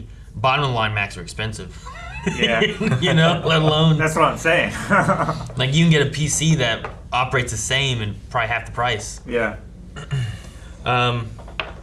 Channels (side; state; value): both; identical; correlation 1.00